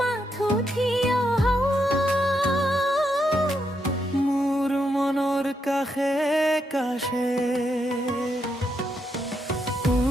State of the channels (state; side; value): normal; both; correlation 0.80